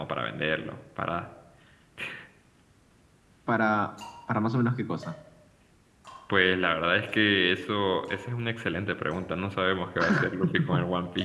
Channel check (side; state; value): both; identical; correlation 1.00